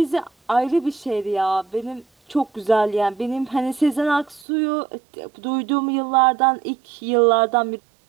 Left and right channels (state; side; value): drops out; left; at 4.5 s